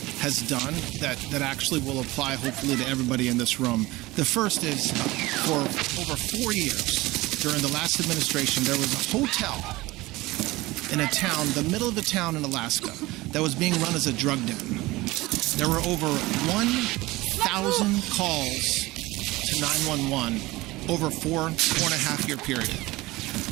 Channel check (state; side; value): quieter; left; 20.0 dB